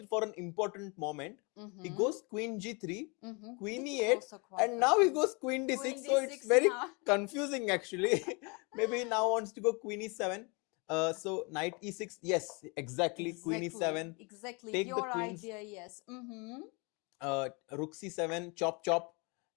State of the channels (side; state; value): right; quieter; 30.8 dB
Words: for an important moment. He Mhm, goes Queen G3, mhm. Queen This is E8, also quite and now he good. goes Queen D6. Queen So it's D6 very now. confusing actually. Maybe he now wants to go Queen E7. So Knight E6. Yes, exactly. Queen E7. Exactly. Take the Your queens. idea, yes. Mm-hmm. Rook C7. Chop chop.